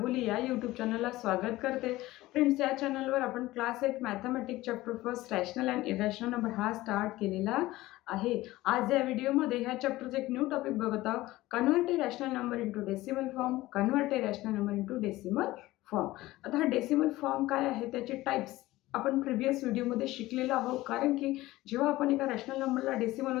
या यूट्यूब चॅनलला स्वागत करते. फ्रेंड्स, या चॅनलवर आपण class 8 mathematics chapter first rational and irrational number हा स्टार्ट केलेला आहे. आज या व्हिडिओमध्ये ह्या चॅप्टरचं एक न्यू टॉपिक बघत आहोत. Convert a rational number into decimal form. Convert a rational number into decimal form. आता हा डेसिमल फॉर्म काय आहे, त्याचे टाइप्स आपण प्रिव्हियस व्हिडिओमध्ये शिकलेलो आहोत. कारण की जेव्हा आपण एका रॅशनल नंबरला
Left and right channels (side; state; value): right; quieter; 17.7 dB